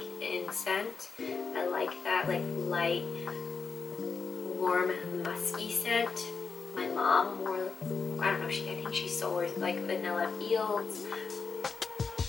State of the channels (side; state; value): right; quieter; 5.1 dB